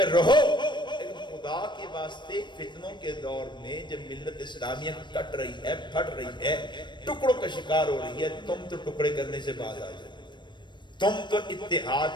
رہو، لیکن خدا کے واسطے فتنوں کے دور میں جب ملت اسلامیہ کٹ رہی ہے، پھٹ رہی ہے، ٹکڑوں کا شکار ہو رہی ہے، تم تو ٹکڑے کرنے سے باز آ جاؤ، تم تو اتحاد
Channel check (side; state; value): right; late; 0.22 ms